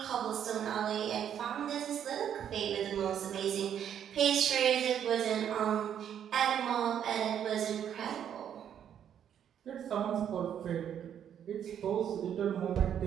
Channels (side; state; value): left; quieter; 9.3 dB